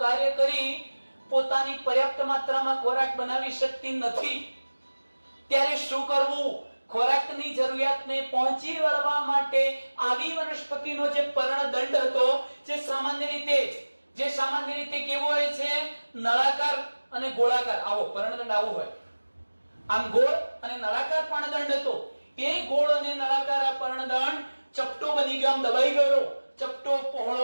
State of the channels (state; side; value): inverted; both; correlation -1.00